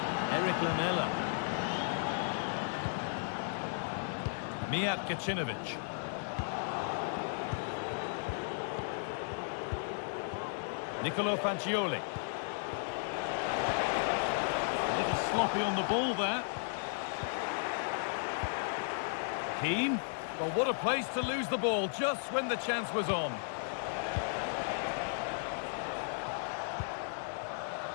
Eric Lamela. Mijat Gacinovic. Nicolo Fagioli. A little sloppy on the ball there. Keane. Well, what a place to lose the ball just when the chance was on.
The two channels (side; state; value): right; silent; digital silence